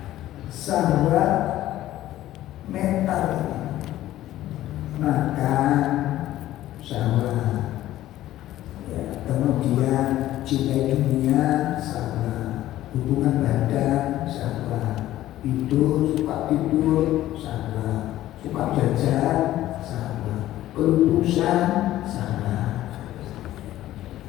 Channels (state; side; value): quieter; right; 14.2 dB